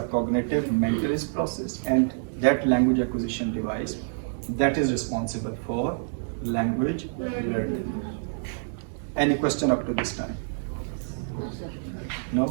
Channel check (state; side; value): silent; left; digital silence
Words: cognitive mentalist process, and that language acquisition device that is responsible for language learning. Any question up to this time? No?